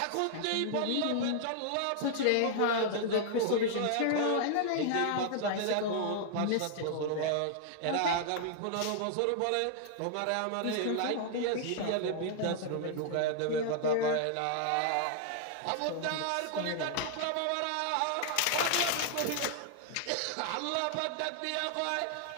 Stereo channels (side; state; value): both; different; correlation -0.01